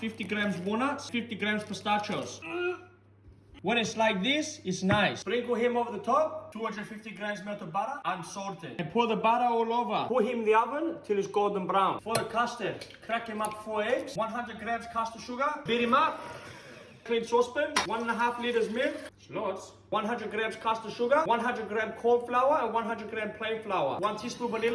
grams walnuts, 50 grams pistachios. When it's like this, it's nice. Sprinkle him over the top, 250 grams melted butter, unsalted. And pour the butter all over. Put him in the oven till it's golden brown. For the custard, crack him up 4 eggs, 100 grams custard sugar, beat him up. Clean saucepan, 1.5 liters milk, it's lots. 100 grams custard sugar, 100 gram corn flour, and 100 gram plain flour. 1 teaspoon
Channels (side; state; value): both; identical; correlation 1.00